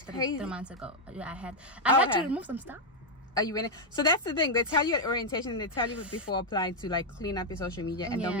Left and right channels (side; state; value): both; normal; correlation 0.00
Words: crazy. 3 months ago. Yeah, I had to remove some stuff. Are you in it? So that's the thing. They tell you at orientation, they tell you before applying to like clean up your social media and don't